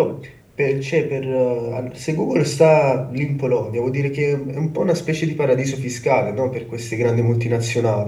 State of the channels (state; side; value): identical; both; correlation 1.00